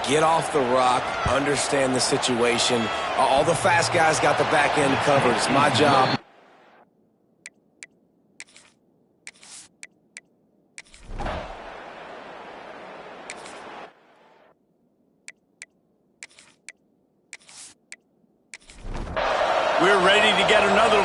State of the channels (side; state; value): both; identical; correlation 1.00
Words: get off the rock, understand the situation. All the fast guys got the back end covered. It's my job. We're ready to get another